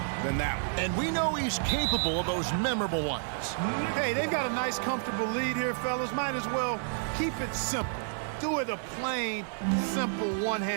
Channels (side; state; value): left; silent; digital silence